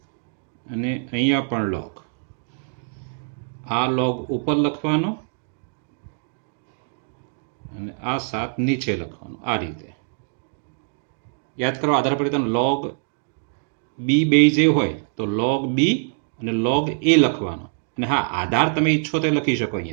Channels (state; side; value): silent; left; digital silence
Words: અને અહીંયા પણ log. આ log ઉપર લખવાનો અને આ 7 નીચે લખવાનું, આ રીતે. યાદ કરો આધાર પરિવર્તન log b બેઝ એ હોય તો log b અને log a લખવાનો. અને હા, આધાર તમે ઈચ્છો તો લખી શકો.